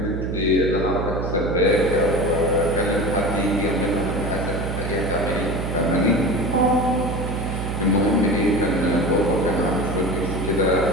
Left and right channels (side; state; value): right; noise; hum, 3 dB below the sound